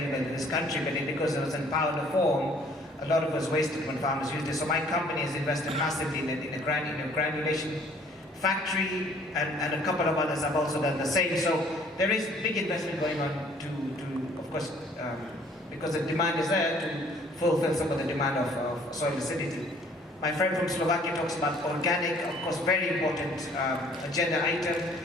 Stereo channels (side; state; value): both; normal; correlation 0.58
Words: in this country, but because it was in powder form, a lot of it was wasted when farmers used it. So my company has invested massively in a granulation factory, and a couple of others have also done the same. So there is big investment going on to of course, because the demand is there, to fulfill some of the demand of soil acidity. My friend from Slovakia talks about organic, of course, very important agenda item,